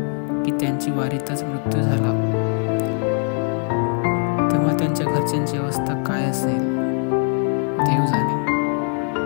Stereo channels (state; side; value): quieter; right; 39.2 dB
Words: की त्यांची वारीतच मृत्यू झाला, तेव्हा त्यांच्या घरच्यांची अवस्था काय असेल देव जाणे.